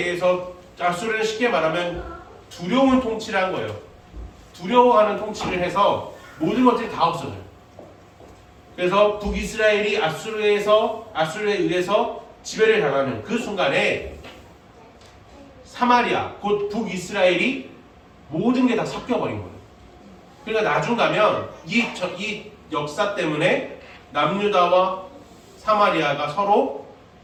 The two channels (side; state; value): both; identical; correlation 1.00